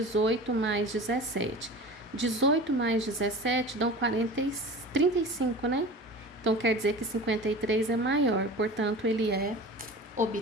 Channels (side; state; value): both; normal; correlation 0.36